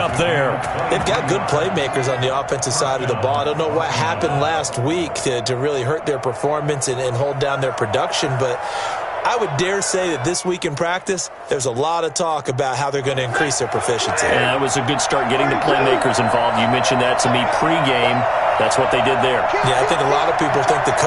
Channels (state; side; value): identical; both; correlation 1.00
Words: there. They've got good playmakers on the offensive side of the ball. I don't know what happened last week to really hurt their performance and hold down their production, but I would dare say that this week in practice, there's a lot of talk about how they're going to increase their proficiency. Yeah, it was a good start getting the playmakers involved. You mentioned that to me pregame. That's what they did there. Yeah, I think a lot of people think the